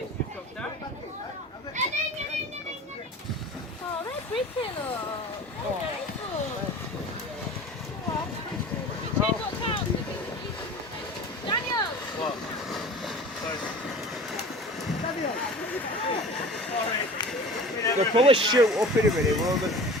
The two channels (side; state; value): both; normal; correlation 0.39